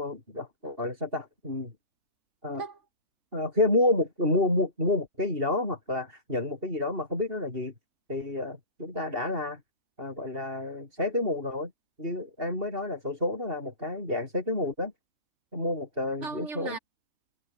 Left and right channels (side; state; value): left; late; 2.7 ms